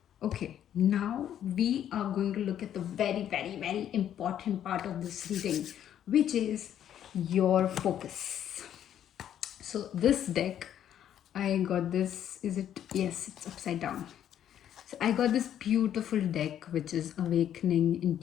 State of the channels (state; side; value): quieter; right; 10.3 dB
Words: Okay, now we are going to look at the very, very, very important part of this reading, which is your focus. So this deck, I got this, yes, it's upside down. So I got this beautiful deck, which is Awakening